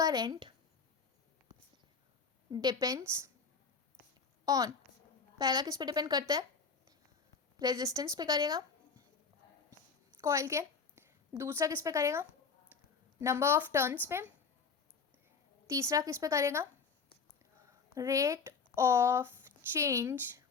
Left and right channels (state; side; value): quieter; right; 5.2 dB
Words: डिपेंड्स ऑन, पहला किस पे डिपेंड करता है, रेजिस्टेंस पे करेगा कॉइल के, दूसरा किस पे करेगा, नंबर ऑफ टर्न्स पे, तीसरा किस पे करेगा, rate of change